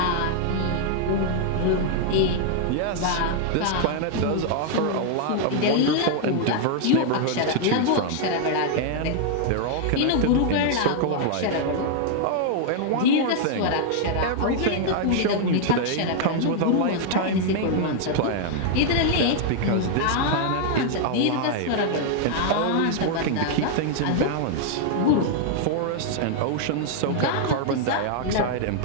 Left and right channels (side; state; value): both; different; correlation 0.00